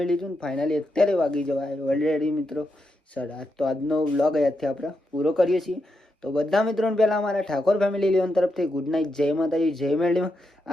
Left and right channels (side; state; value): both; normal; correlation 0.84